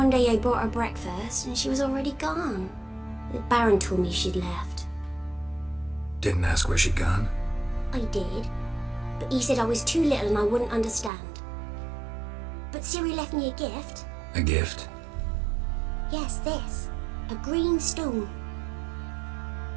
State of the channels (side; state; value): left; drops out; at 11.1 s